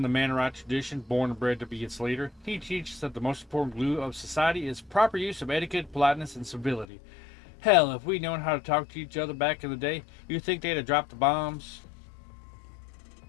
the Mannerite tradition, born and bred to be its leader. He teaches that the most important glue of society is proper use of etiquette, politeness, and civility. Hell, if we'd known how to talk to each other back in the day, you'd think they'd have dropped the bombs.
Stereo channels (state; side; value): drops out; right; at 6.9 s